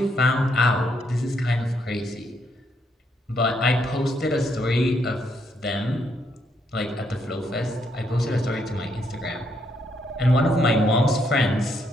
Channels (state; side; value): normal; both; correlation 0.74